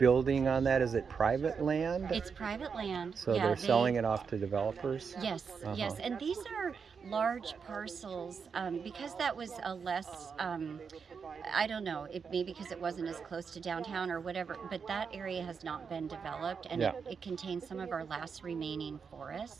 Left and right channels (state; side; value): quieter; left; 6.0 dB